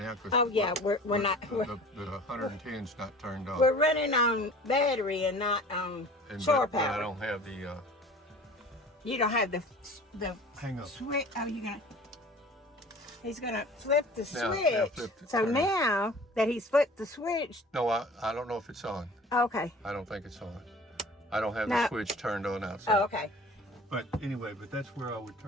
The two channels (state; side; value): normal; both; correlation 0.44